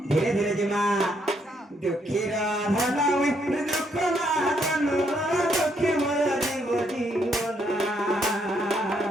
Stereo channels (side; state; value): both; normal; correlation 0.73